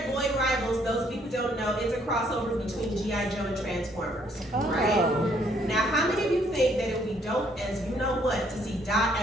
Void Rivals, those of you who don't know, it's a crossover between G.I. Joe and Transformers, right? Now, how many of you think that it would be dope as you know what to see Dot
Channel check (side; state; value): both; normal; correlation 0.67